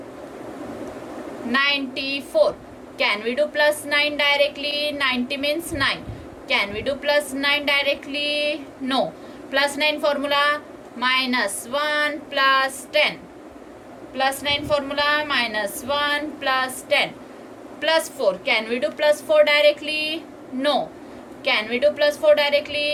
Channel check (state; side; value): identical; both; correlation 1.00